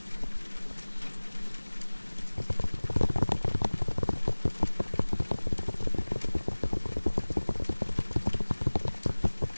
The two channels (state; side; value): inverted; both; correlation -1.00